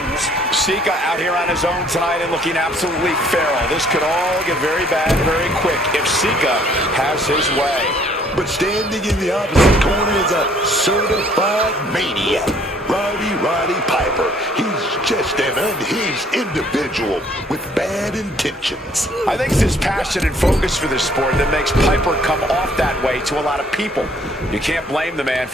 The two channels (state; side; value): normal; both; correlation 0.61